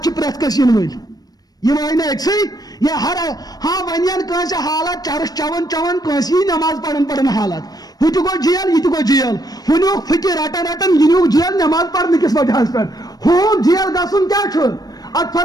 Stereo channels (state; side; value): late; right; 0.19 ms